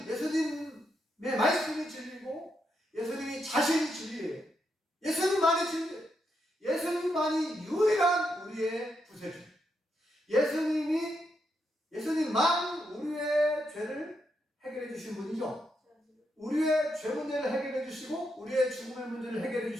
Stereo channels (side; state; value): both; normal; correlation 0.81